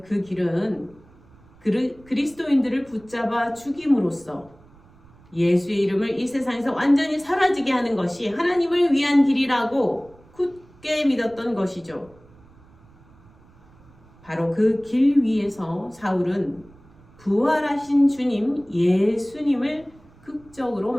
그 길은 그리스도인들을 붙잡아 죽임으로써 예수의 이름을 이 세상에서 완전히 사라지게 하는 것이 하나님을 위한 길이라고 굳게 믿었던 것이죠. 바로 그 길 위에서 사울은 부활하신 주님 예수님을 극적으로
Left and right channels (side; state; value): right; noise; rumble, 27 dB below the sound